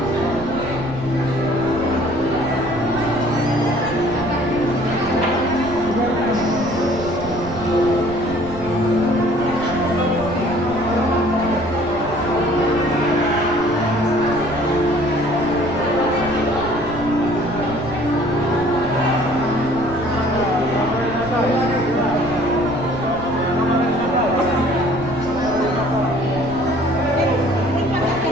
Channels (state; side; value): noise; right; rumble, 13 dB below the sound